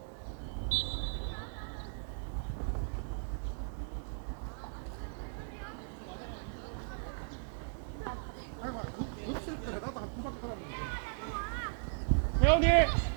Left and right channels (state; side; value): silent; left; digital silence